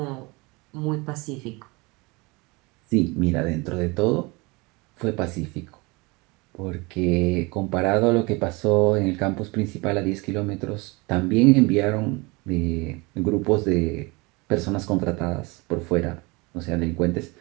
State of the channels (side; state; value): left; quieter; 25.9 dB